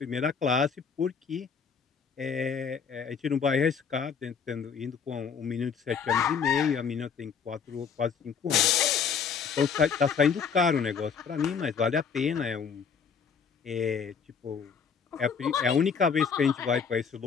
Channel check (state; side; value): quieter; right; 6.4 dB